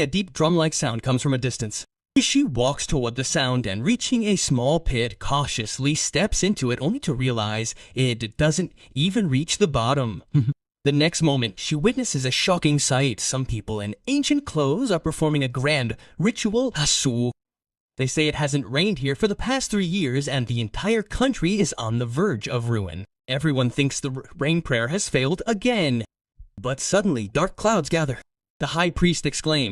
a deep drum-like sound comes from a distance. She walks toward the sound and, reaching a small pit, cautiously steps into it only to realize it doesn't even reach the bottom. The next moment, she witnesses a shocking sight. Some people in ancient clothes are performing a grand ritual hasu. They say it hasn't rained here for the past 3 years and the entire country is on the verge of ruin. Everyone thinks the rain prayer has failed again. But suddenly, dark clouds gather. The high priest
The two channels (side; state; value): both; identical; correlation 1.00